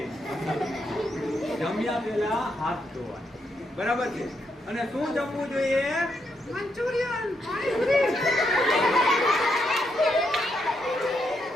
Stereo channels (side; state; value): both; normal; correlation 0.79